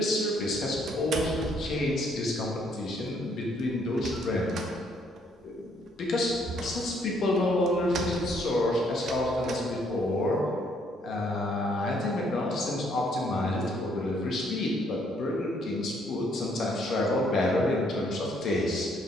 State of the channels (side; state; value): both; normal; correlation 0.68